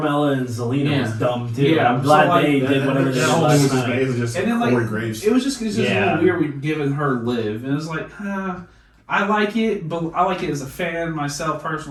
and Zelina was dumb too. Yeah, I'm glad so, like, they did whatever they did last night. It was just And then, like, Corey Graves. It was just a little weird giving her Liv, and it was like, I like it, but I like it as a fan myself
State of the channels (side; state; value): both; identical; correlation 1.00